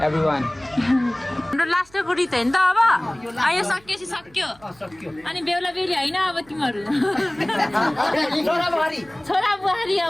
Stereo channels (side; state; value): right; noise; hum, 28 dB below the sound